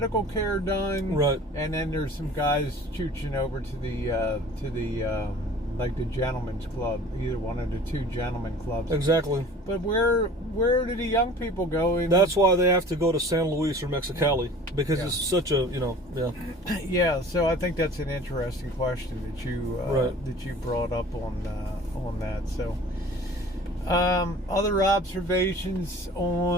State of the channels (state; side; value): normal; both; correlation 0.45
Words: care done, and then there's some guys chooching over to the like the gentleman's club, either one of the two gentlemen clubs. Exactly. But where do the young people go? That's why they have to go to San Luis or Mexicali, because it's such a, Yeah, so I think that's an interesting question that you brought up on that. So other observations